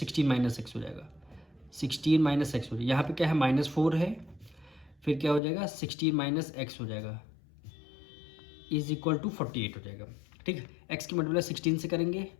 माइनस एक्स हो जाएगा, 16 माइनस एक्स हो जाएगा। यहाँ पे क्या है? -4 है, फिर क्या हो जाएगा? 16 माइनस एक्स हो जाएगा, इज इक्वल टू 48 हो जाएगा, ठीक है। एक्स की मल्टीप्लाई 16 से करेंगे,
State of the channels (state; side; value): drops out; right; at 5.4 s